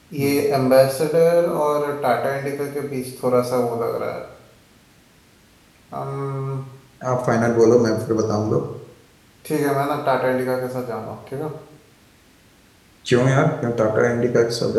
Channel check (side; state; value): both; identical; correlation 1.00